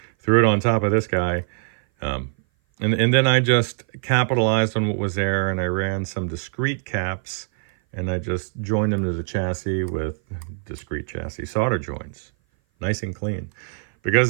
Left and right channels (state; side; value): silent; left; 57 dB below the other